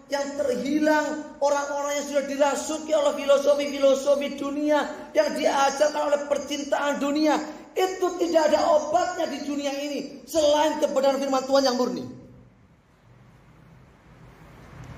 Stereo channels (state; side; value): identical; both; correlation 1.00